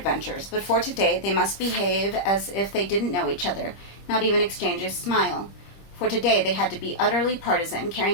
but for today they must behave as if they didn't know each other, not even exchange a smile. For today they had to be utterly partisan,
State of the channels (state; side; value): late; right; 25 ms